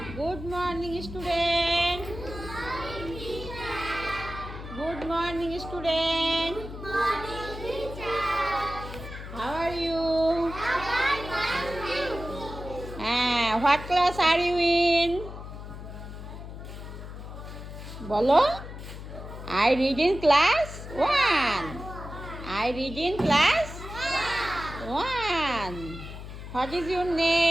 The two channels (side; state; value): left; noise; hum, 11 dB below the sound